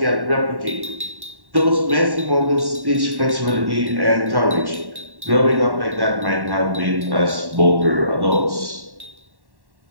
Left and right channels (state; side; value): late; left; 1.1 ms